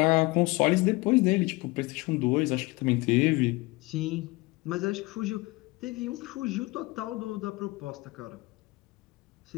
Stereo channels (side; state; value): right; quieter; 23.0 dB